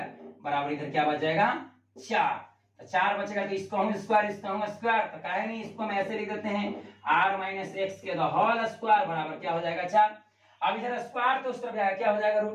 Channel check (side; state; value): both; identical; correlation 1.00